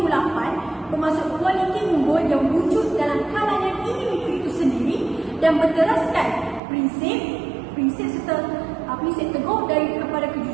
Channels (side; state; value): left; drops out; at 6.6 s